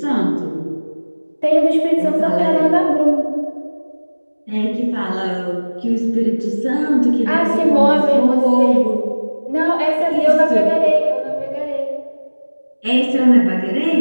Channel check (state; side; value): inverted; both; correlation -1.00